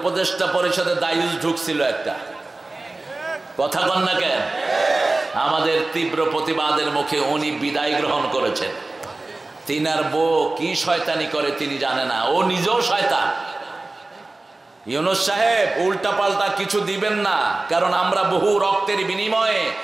পরিষদে দায়ুস ঢুকছিল একটা, কথা বল না কেন? আমাদের তীব্র প্রতিবাদের মুখে উনি বিদায় গ্রহণ করেছেন। তিনার বউ কি শয়তানি করে তিনি জানে না, ও নিজেও শয়তান। ইউনূস সাহেব উল্টা পাল্টা কিছু দিবেন না, কারণ আমরা বহু রক্তের বিনিময়ে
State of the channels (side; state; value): left; quieter; 3.1 dB